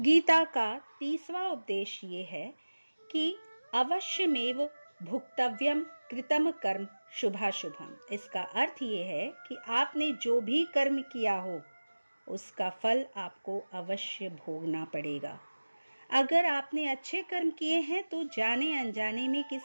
का 30वां उपदेश ये है कि अवश्यमेव भुक्तव्यम कृतम कर्म शुभाशुभम। इसका अर्थ ये है कि आपने जो भी कर्म किया हो उसका फल आपको अवश्य भोगना पड़ेगा। अगर आपने अच्छे कर्म किए हैं तो जाने अनजाने में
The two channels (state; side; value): inverted; both; correlation -1.00